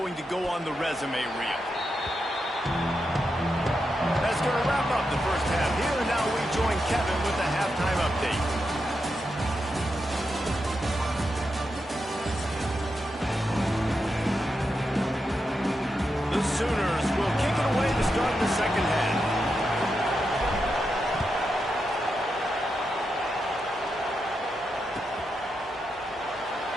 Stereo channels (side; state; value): both; normal; correlation 0.86